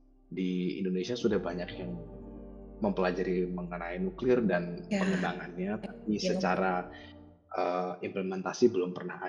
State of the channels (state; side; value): identical; both; correlation 1.00